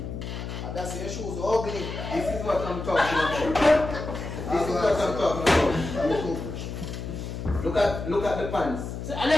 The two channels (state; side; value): noise; left; hum, 7 dB below the sound